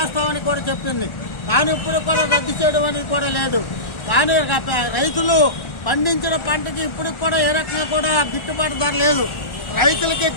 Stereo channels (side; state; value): right; late; 1.4 ms